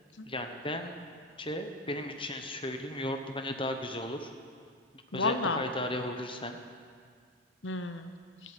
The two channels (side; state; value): both; normal; correlation 0.15